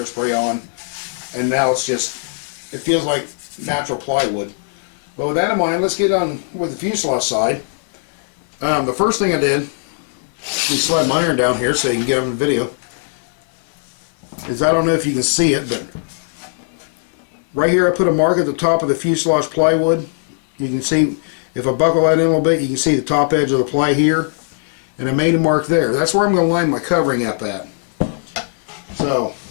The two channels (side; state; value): right; silent; digital silence